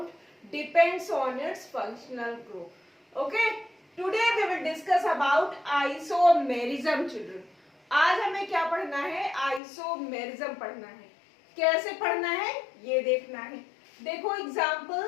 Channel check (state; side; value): drops out; right; at 9.6 s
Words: depends on its functional group. Okay, today we will discuss about isomerism children. आज हमें क्या पढ़ना है? आइसोमेरिज्म पढ़ना है. कैसे पढ़ना है ये देखना है. देखो